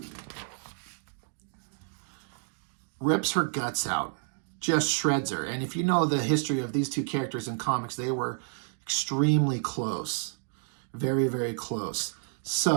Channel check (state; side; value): silent; left; 57 dB below the other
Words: Rips her guts out. Just shreds her. And if you know the history of these two characters in comics, they were extremely close. Very, very close.